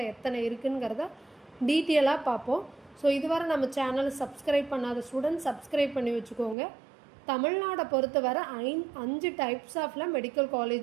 எத்தனை இருக்குங்கிறத டீட்டெயிலாக பார்ப்போம். ஸோ இதுவரை நம்ம சேனலை சப்ஸ்கிரைப் பண்ணாத ஸ்டூடெண்ட் சப்ஸ்கிரைப் பண்ணி வச்சுக்கோங்க. தமிழ்நாடை பொறுத்தவரை 5 டைப்ஸ் ஆஃப்ல மெடிக்கல்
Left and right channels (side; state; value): left; drops out; at 6.6 s